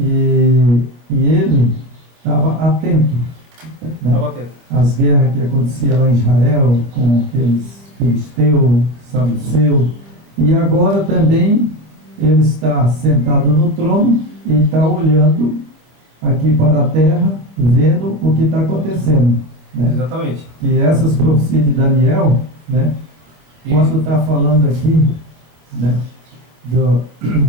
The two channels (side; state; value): left; late; 26 ms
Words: ele estava atento, né? Estava atento. As guerras que aconteciam lá em Israel, com aqueles filisteus, saduceus, e agora também ele está sentado no trono e está olhando aqui para a terra, vendo o que está acontecendo, né? Exatamente. Que essas profecias de Daniel, né? Isso. Quando está falando aqui, né, do